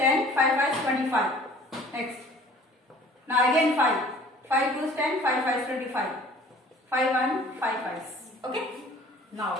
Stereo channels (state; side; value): normal; both; correlation 0.50